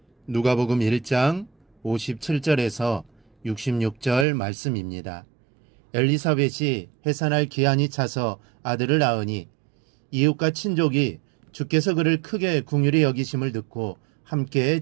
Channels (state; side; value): drops out; left; at 4.2 s